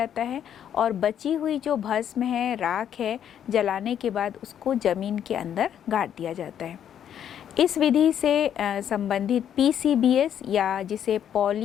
है और बची हुई जो भस्म है, राख है, जलाने के बाद उसको ज़मीन के अंदर गाड़ दिया जाता है। इस विधि से संबंधित PCBS या जिसे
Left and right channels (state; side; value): quieter; right; 9.5 dB